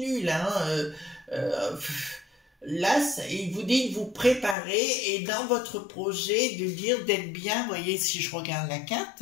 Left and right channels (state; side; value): drops out; right; at 4.5 s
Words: là, hein, là, il vous dit de vous préparer et dans votre projet de dire d'être bien, vous voyez, si je regarde la